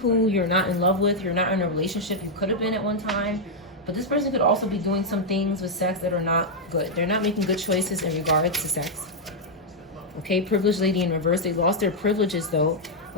you're not in love with. You're not in a relationship. You could have been at one time. But this person could also be doing some things with sex that are not good. They're not making good choices in regards to sex. Okay, privileged lady in reverse. They lost their privileges though.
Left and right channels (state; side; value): normal; both; correlation -0.03